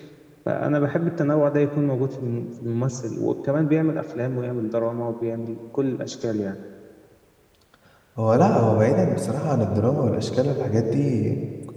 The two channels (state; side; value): identical; both; correlation 1.00